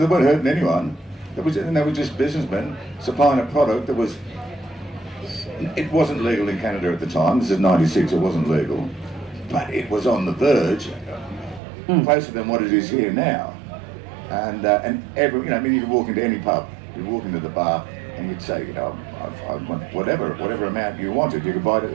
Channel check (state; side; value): drops out; left; at 11.6 s